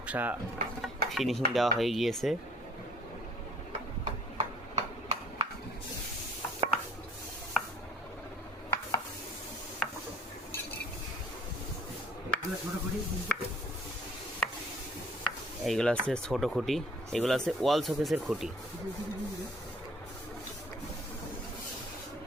ফিনিশিং দেওয়া হয়ে গিয়েছে। এইগুলো হচ্ছে ছোট খুঁটি, এগুলো হচ্ছে ওয়াল শোকেসের খুঁটি।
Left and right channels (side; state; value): both; normal; correlation 0.56